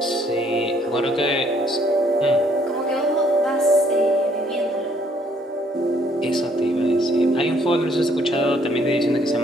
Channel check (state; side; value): normal; both; correlation 0.65